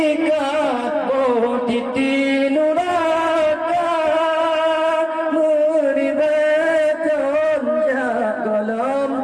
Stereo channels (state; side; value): identical; both; correlation 1.00